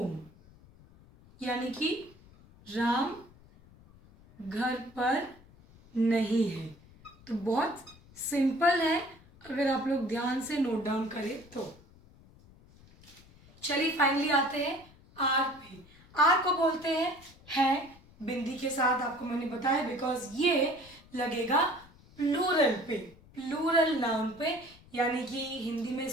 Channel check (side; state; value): left; noise; rumble, 25 dB below the sound